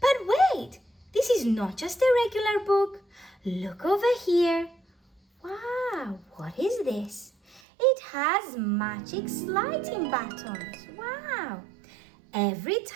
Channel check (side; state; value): left; drops out; at 7.6 s